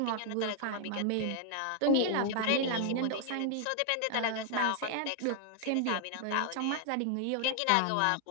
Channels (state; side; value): different; both; correlation 0.00